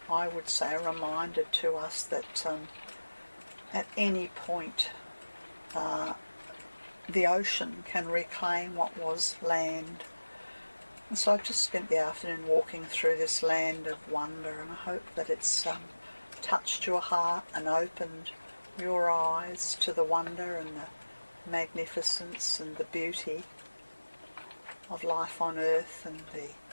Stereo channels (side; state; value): both; inverted; correlation -1.00